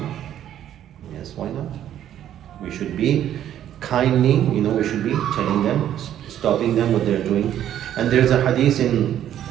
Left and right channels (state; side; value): quieter; left; 11.0 dB